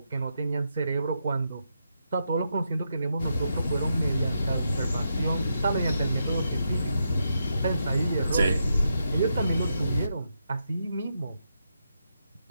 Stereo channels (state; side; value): inverted; both; correlation -0.83